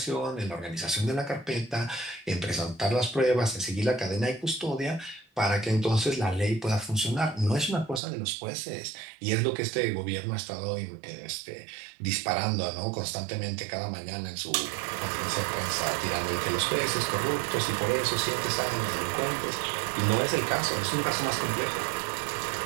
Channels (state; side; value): drops out; left; at 8.0 s